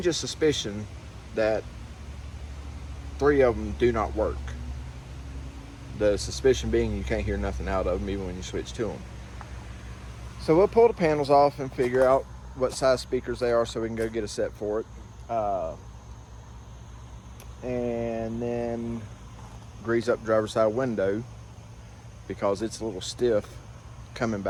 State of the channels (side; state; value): both; identical; correlation 1.00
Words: suspicion that 3 of them do not work. The suspicion being you can't hear nothing out of them even when you switch to them. So we'll pull the panels off and figure out what size speakers they are so we can go get a set for it. And then grease up the driver's side window because it's a little stiff coming